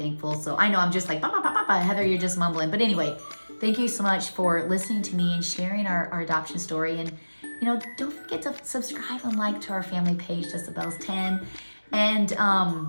So I know I'm just like, bah, bah, bah, bah, bah. Heather, you're just mumbling. But anyway, thank you so much for listening to me and sharing our adoption story. And, you know, don't forget to subscribe and like to our family page, Just the Bells 10. And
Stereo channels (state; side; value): inverted; both; correlation -1.00